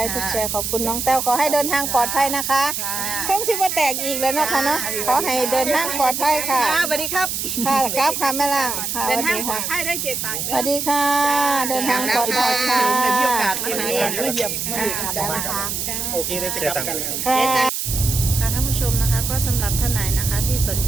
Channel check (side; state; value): right; noise; hiss, 2 dB below the sound